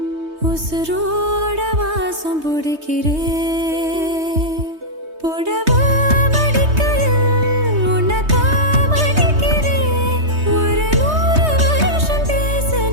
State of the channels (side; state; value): left; late; 3.2 ms